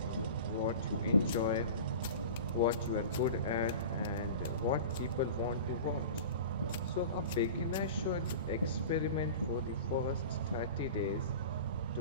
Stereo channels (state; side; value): inverted; both; correlation -0.35